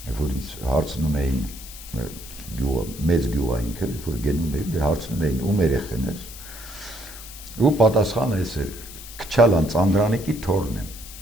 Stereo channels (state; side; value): noise; left; hiss, 14 dB below the sound